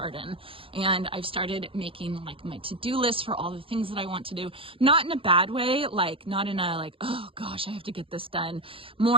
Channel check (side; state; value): left; late; 0.26 ms